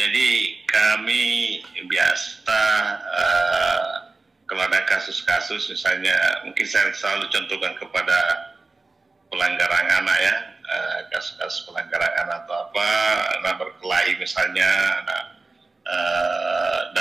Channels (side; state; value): left; quieter; 3.6 dB